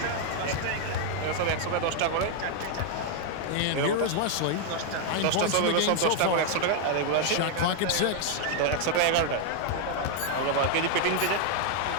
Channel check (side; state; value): both; different; correlation 0.00